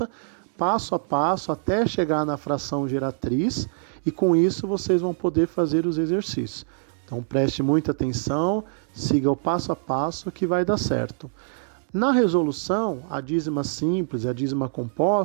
passo a passo, até chegar na fração geratriz, e com isso vocês vão poder fazer os exercícios. Então preste muita atenção, siga o passo a passo que vai dar certo. Na resolução, a dízima simples e a dízima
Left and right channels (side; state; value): left; silent; 62 dB below the other